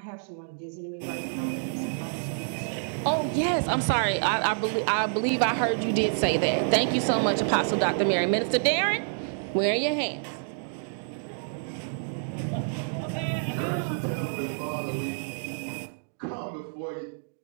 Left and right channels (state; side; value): silent; left; digital silence